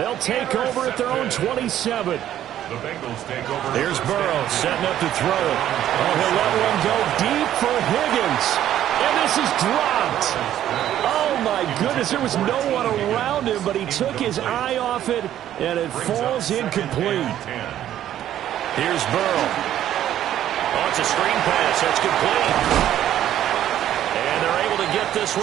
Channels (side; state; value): left; quieter; 11.7 dB